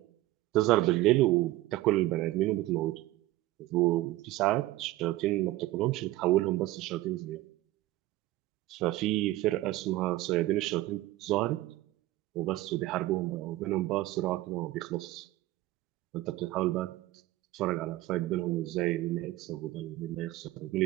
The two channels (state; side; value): quieter; left; 17.0 dB